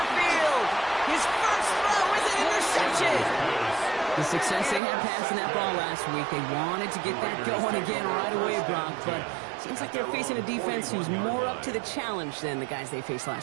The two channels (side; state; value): left; drops out; at 4.8 s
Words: field. His first throw is an interception. The success they had passing that ball last week, they wanted to get that going again right away, Brock, but seems like they're facing a defense who's more up to the challenge than the guys they faced